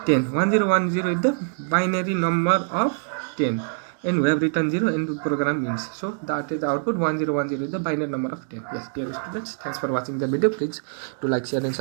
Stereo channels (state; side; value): silent; left; digital silence